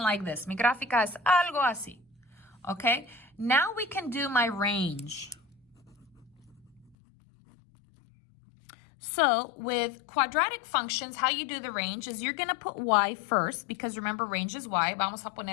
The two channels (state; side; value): drops out; right; at 7.0 s